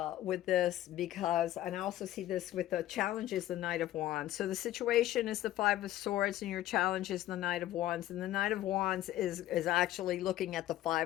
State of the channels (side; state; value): right; quieter; 14.0 dB